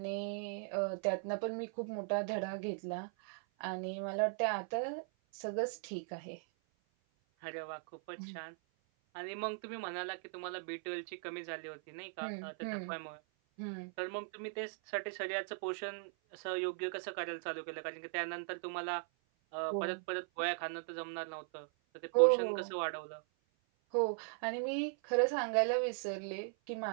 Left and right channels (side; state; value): left; silent; 52 dB below the other